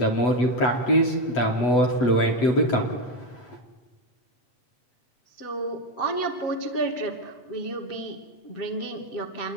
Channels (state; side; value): late; right; 8.1 ms